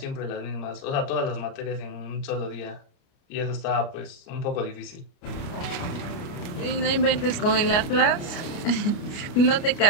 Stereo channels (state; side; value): late; right; 29 ms